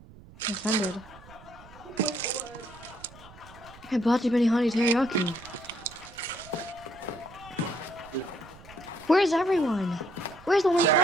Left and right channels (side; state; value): right; noise; rumble, 21 dB below the sound